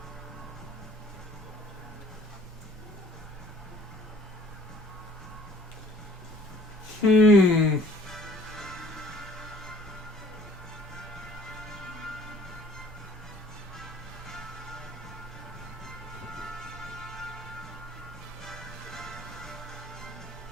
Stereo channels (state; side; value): normal; both; correlation 0.55